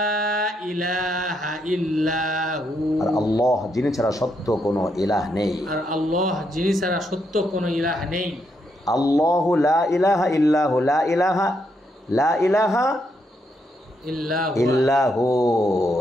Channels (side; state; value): both; normal; correlation 0.78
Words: إله إلا هو আর আল্লাহ যিনি ছাড়া সত্য কোনো ইলাহ নেই আর আল্লাহ যিনি ছাড়া সত্য কোনো ইলাহ নেই আল্লাহু লা ইলাহা ইল্লাহু লা ইলাহা ইল্লাহু